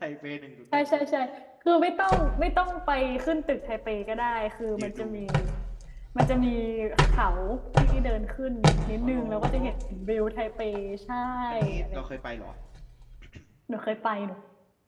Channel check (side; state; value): both; identical; correlation 1.00